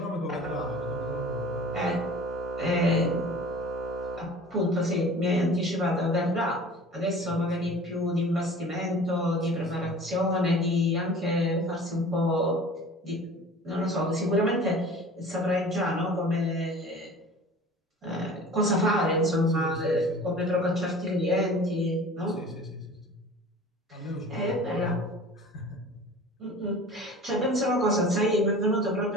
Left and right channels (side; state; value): both; normal; correlation 0.42